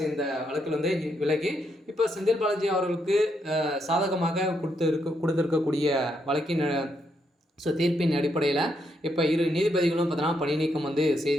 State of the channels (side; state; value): both; normal; correlation 0.78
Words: இந்த வழக்கில் விலகி இப்போ செந்தில் பாலாஜி அவர்களுக்கு சாதகமாக கொடுத்திருக்கக்கூடிய வழக்கின் தீர்ப்பின் அடிப்படையில் இப்போ 2 நீதிபதிகளும் பார்த்தீங்கன்னா பணி நீக்கம்